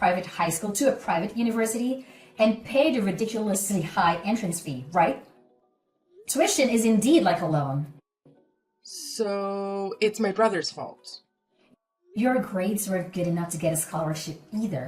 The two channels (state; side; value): identical; both; correlation 1.00